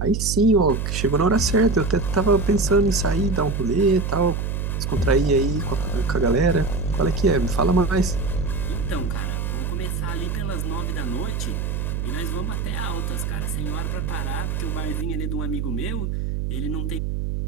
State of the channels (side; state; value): right; noise; hum, 2 dB below the sound